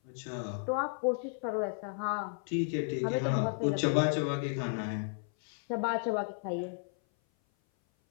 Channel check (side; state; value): right; silent; 56 dB below the other